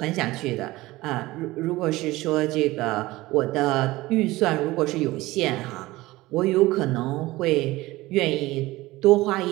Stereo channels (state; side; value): quieter; left; 19.0 dB